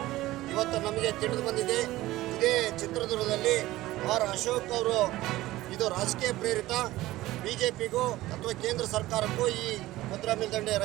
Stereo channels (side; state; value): left; quieter; 17.0 dB